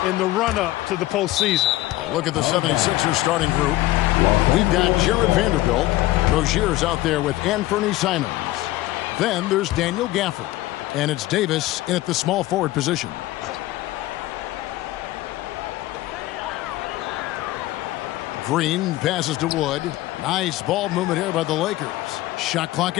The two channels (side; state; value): right; quieter; 17.1 dB